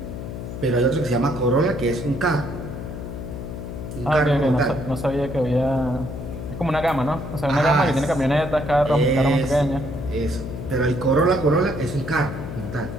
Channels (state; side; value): noise; left; hum, 8 dB below the sound